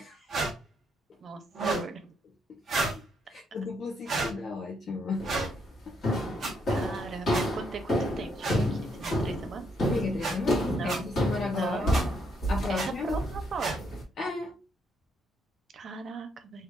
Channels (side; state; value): both; normal; correlation 0.75